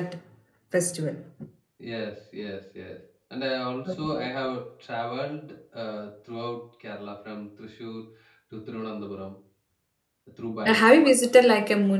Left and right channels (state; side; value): identical; both; correlation 1.00